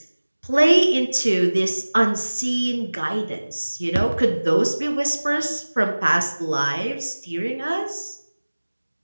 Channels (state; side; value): inverted; both; correlation -1.00